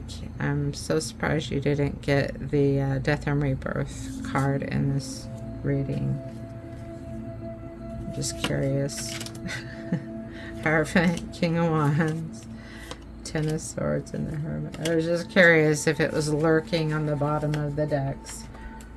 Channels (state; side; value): identical; both; correlation 1.00